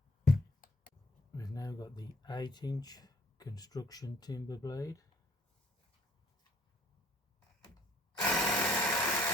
We've now got the 8-inch construction timber blade.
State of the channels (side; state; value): both; normal; correlation 0.59